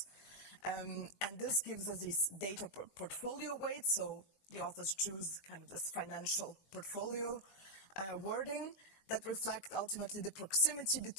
And this gives us these data portfolio weights, so the authors choose kind of this financial portfolio wording that reflect ultimately the proximity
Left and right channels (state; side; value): late; right; 21 ms